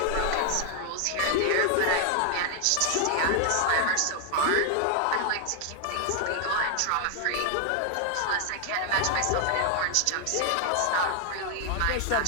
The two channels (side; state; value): both; different; correlation 0.00